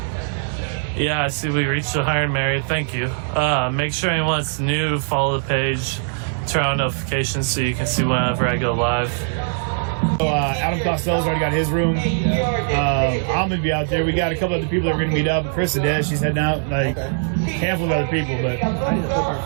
Yeah, I see we reached the Hired Mary. Thank you. Make sure anyone that's new, follow the page, turn on notifications so you can see whenever I go live. So, Adam Costello's already got his room. I'm gonna be out there. We got a couple other people that are gonna meet up. Chris Adez, she's heading out. Like a handful of other people, but I need to book our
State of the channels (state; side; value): silent; left; 57 dB below the other